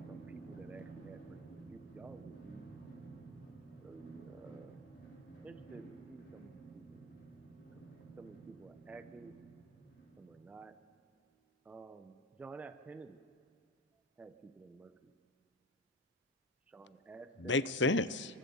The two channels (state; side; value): normal; both; correlation 0.22